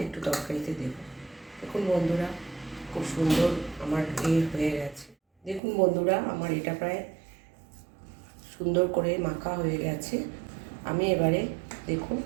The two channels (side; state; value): left; drops out; at 5.6 s